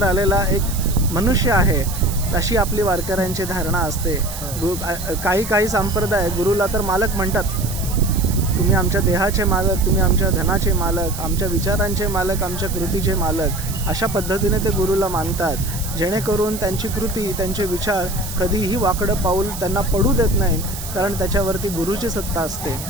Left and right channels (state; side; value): noise; right; hiss, 10 dB below the sound